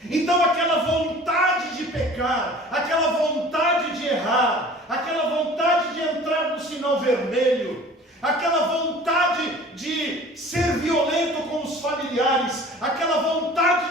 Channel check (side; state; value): both; normal; correlation 0.45